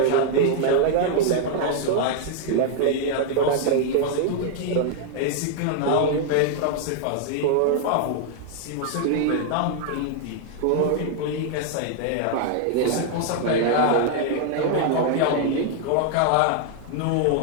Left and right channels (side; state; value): both; different; correlation 0.00